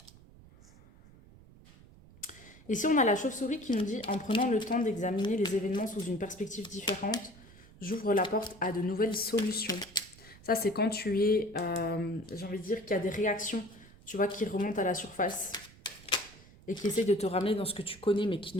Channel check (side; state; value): right; noise; rumble, 22 dB below the sound